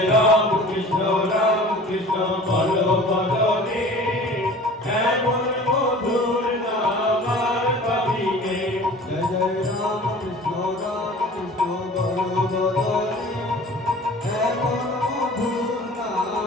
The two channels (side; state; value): both; normal; correlation 0.43